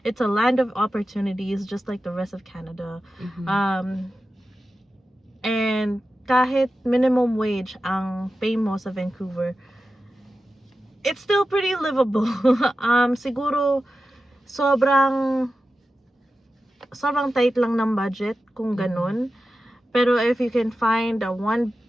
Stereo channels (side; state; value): both; normal; correlation 0.92